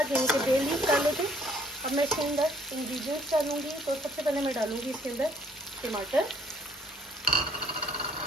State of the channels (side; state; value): both; normal; correlation 0.62